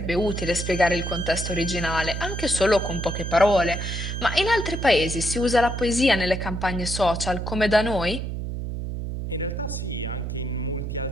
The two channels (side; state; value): right; noise; hum, 4 dB below the sound